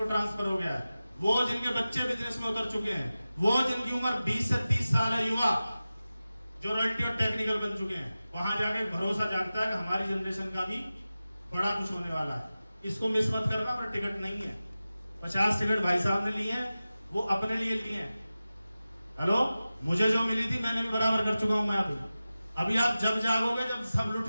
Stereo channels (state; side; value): inverted; both; correlation -0.95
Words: ट्रांसफर हो गया है, वो जिनके बच्चे बिजनेस में उतर चुके हैं, वो जिनकी उम्र 20 से 30 साल है, युवा जो रॉयल्टी और टेक्निकल बन चुके हैं, वहां जाके भरोसा जागता है कि हमारी जनरेशन का भी बड़ा कुछ होने वाला है। इसको मिस मत करना, पर टिकट नहीं है। 50 टिकट भाई साहब ने लिए हैं, वो अपने लिए लिए हैं। हेलो, मुझे जो मिली थी मैंने भी बराबर कर चुका हूं मैं। अभी आप जब जागोगे, जब सब